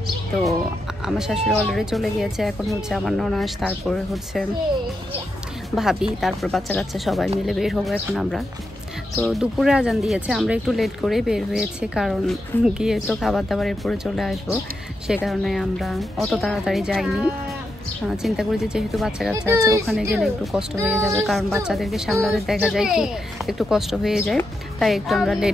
তো আমার শাশুড়ি অলরেডি চলে গিয়েছে, এখন হচ্ছে আমার ননাস, তারপরে হচ্ছে ভাবি, তারপর বাচ্চা কাচ্চা সবাই মিলে বের হবো এখন আমরা। তো দুপুরে আজান দিয়েছে, আমরা একটু লেট করে বের হয়েছি, কারণ গিয়ে তো খাবার দাবারের পরে চলে আসবো, সে কারণে আমরা অত তাড়াতাড়ি যাইনি। চিন্তা করি যে যেহেতু বাচ্চা কাচ্চা আছে ওখানে গেলে একটু কষ্ট হয়ে যাবে, কারণ বাচ্চাদেরকে সামলাতে দেখা যায় কি একটু কষ্ট হয়ে যায়, তাই একটু আমরা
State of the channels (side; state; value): both; normal; correlation 0.85